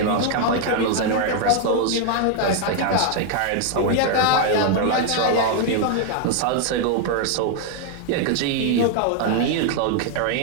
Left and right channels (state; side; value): different; both; correlation 0.00